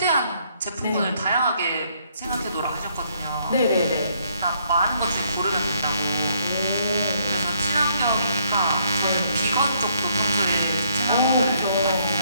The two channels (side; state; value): both; inverted; correlation -0.69